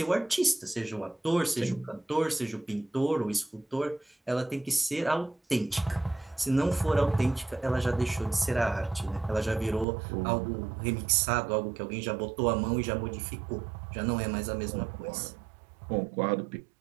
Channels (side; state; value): left; drops out; at 9.9 s